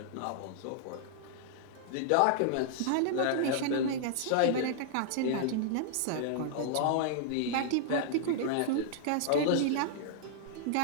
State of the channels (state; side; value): different; both; correlation -0.01